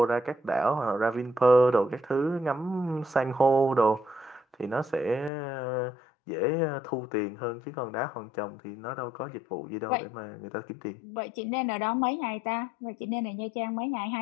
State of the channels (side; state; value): right; drops out; at 5.3 s